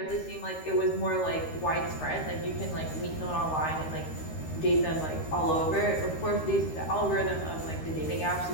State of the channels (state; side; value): late; right; 13 ms